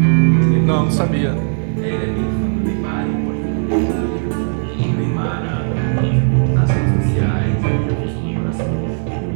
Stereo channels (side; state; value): left; silent; digital silence